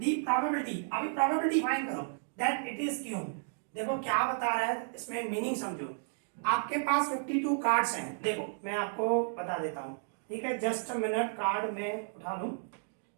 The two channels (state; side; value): silent; left; digital silence